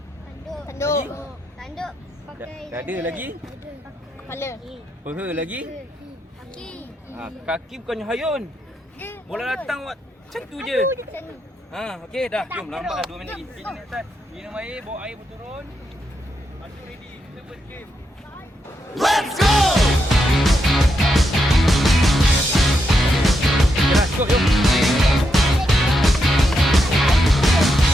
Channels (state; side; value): normal; both; correlation 0.82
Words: Tanduk. Dada lagi? Kepala. Peha lagi? Kaki. Kaki bukannya hayun. Bola datang awak macam tu je. Okey dah. Jom lambat dah 2 minit lagi. Kita naik atas. Minum air, bawa air berturun. Masuk ready. Kita first game. Let's go! Dah cukup jom.